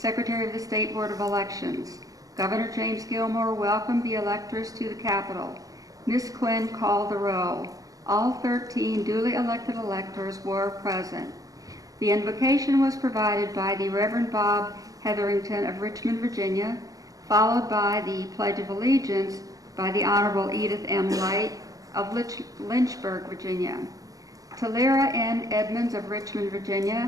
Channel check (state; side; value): late; left; 0.17 ms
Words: of the State Board of Elections. Governor James Gilmore welcomed the electors to the Capitol. Ms. Quinn called the roll. All 13 duly elected electors were present. The invocation was provided by the Reverend Bob Hetherington of Richmond, Virginia, followed by the Pledge of Allegiance by the Honorable Edith M. Light of Lynchburg, Virginia. Talera N. Edmonds of Richmond,